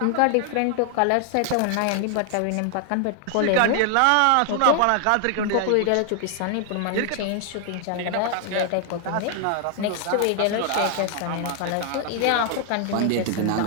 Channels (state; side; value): different; both; correlation 0.00